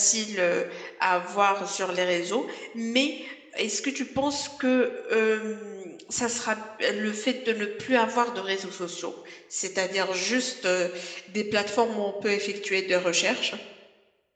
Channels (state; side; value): identical; both; correlation 1.00